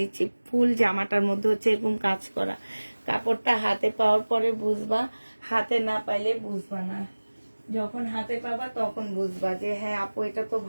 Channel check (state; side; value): inverted; both; correlation -1.00